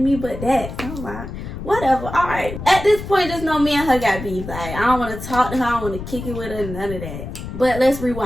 but that. So I'm like, whatever. All right. At this point, just know me and her got beef. Like, I don't want to talk to her. I don't want to kick it with her. None of that. But let's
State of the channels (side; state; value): left; noise; rumble, 9 dB below the sound